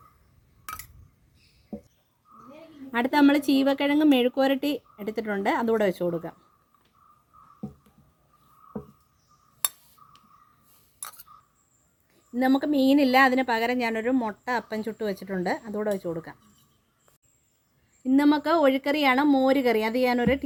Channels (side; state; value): both; identical; correlation 1.00